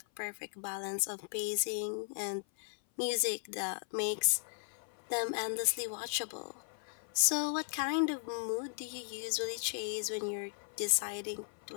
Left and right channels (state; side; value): silent; right; 53 dB below the other